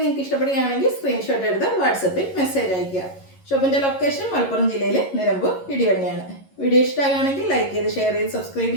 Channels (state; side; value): late; right; 11 ms